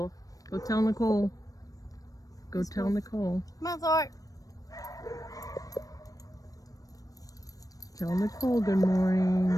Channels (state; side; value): late; right; 0.17 ms